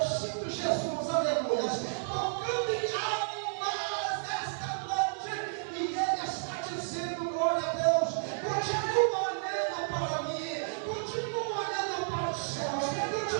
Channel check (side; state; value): left; silent; digital silence